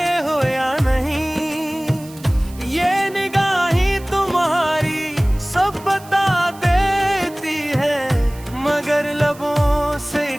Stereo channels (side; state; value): right; noise; hiss, 21 dB below the sound